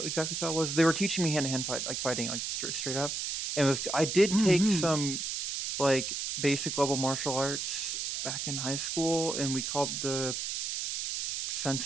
exactly style it was. They were teaching me hand-to-hand fight, like fighting, like straight up. And it was I did take some like basic level martial arts back in high school, and we called the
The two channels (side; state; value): right; noise; hiss, 3 dB below the sound